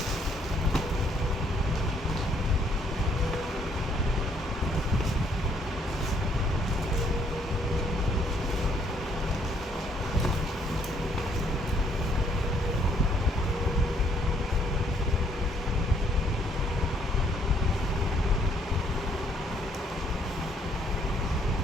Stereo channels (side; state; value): both; normal; correlation 0.67